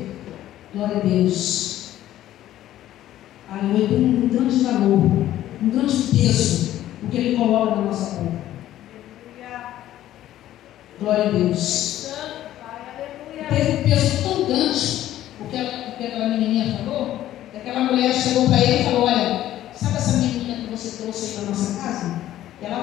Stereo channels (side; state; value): right; quieter; 13.2 dB